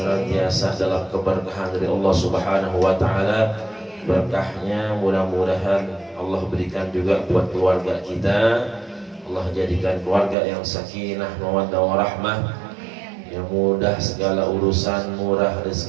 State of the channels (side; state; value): left; drops out; at 10.4 s